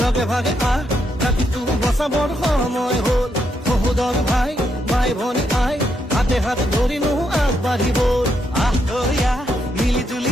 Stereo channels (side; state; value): both; normal; correlation 0.79